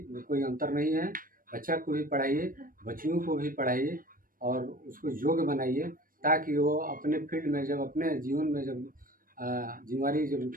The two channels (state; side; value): late; left; 0.41 ms